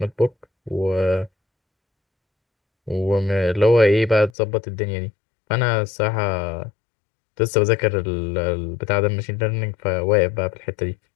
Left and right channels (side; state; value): right; drops out; at 4.3 s